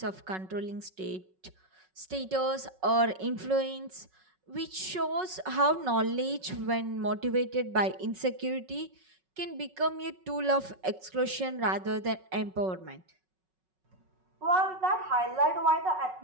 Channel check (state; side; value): late; left; 5.4 ms